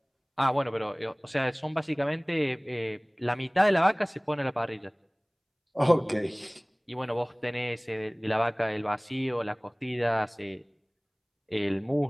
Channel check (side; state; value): both; identical; correlation 1.00